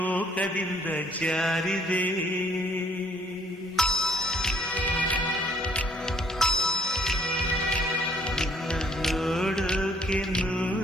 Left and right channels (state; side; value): normal; both; correlation 0.63